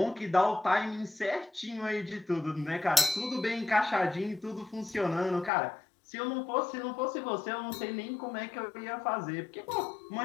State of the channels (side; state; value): right; drops out; at 5.5 s